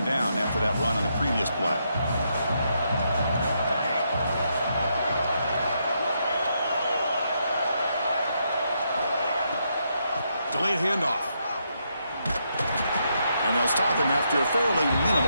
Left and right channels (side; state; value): both; inverted; correlation -0.79